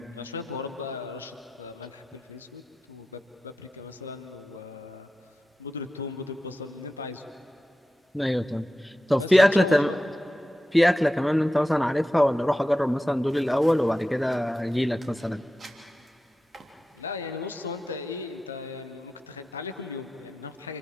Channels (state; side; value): normal; both; correlation 0.92